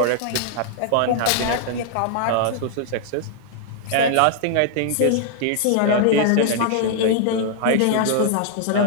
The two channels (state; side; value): different; both; correlation 0.00